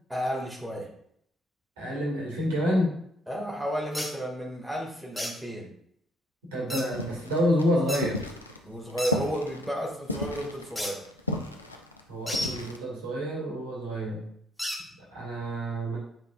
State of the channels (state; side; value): normal; both; correlation 0.67